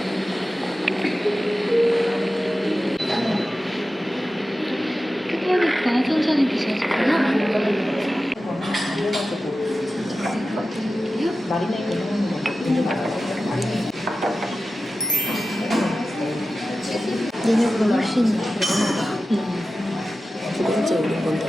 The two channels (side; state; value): both; normal; correlation 0.94